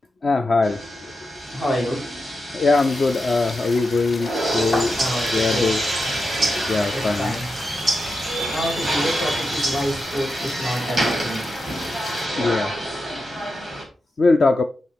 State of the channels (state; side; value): normal; both; correlation 0.89